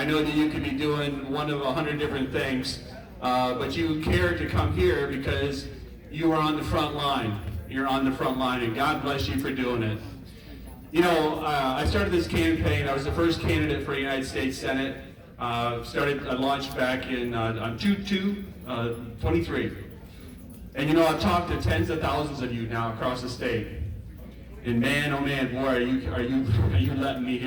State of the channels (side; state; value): both; identical; correlation 1.00